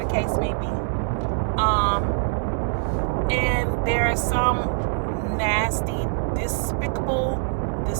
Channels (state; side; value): silent; left; digital silence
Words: case may be. And there is some nasty, despicable,